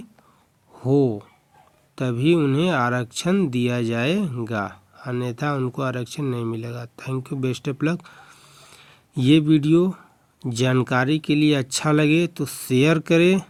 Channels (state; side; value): identical; both; correlation 1.00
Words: हो तभी उन्हें आरक्षण दिया जाएगा, अन्यथा उनको आरक्षण नहीं मिलेगा। Thank you, best of luck. ये वीडियो जानकारी के लिए अच्छा लगे तो शेयर करें